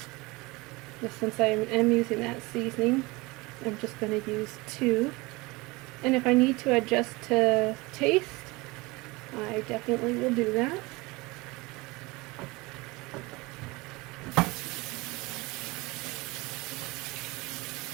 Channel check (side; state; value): left; quieter; 23.5 dB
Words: But since I am using that seasoning, I'm just going to use 2. And if I need to adjust to taste, I definitely will do that.